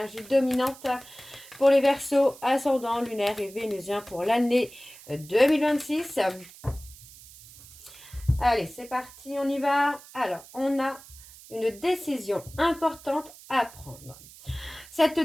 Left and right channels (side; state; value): right; noise; hiss, 20 dB below the sound